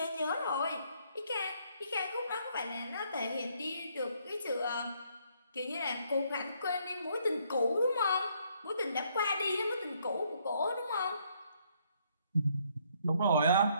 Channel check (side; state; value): both; inverted; correlation -0.69